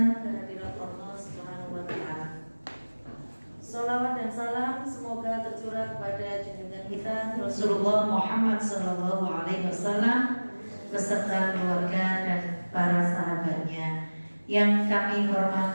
kehadirat Allah Subhanahu wa taala. Salawat dan salam semoga tercurah kepada junjungan kita Rasulullah Muhammad sallallahu alaihi wasallam beserta keluarga dan para sahabatnya. Yang kami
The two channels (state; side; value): inverted; both; correlation -1.00